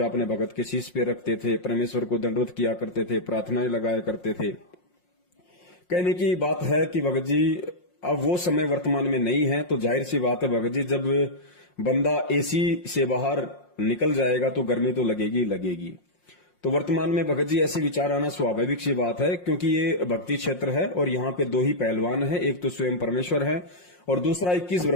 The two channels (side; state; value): right; late; 5.6 ms